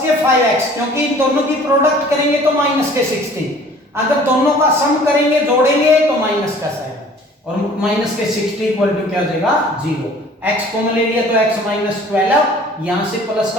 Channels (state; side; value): normal; both; correlation 0.50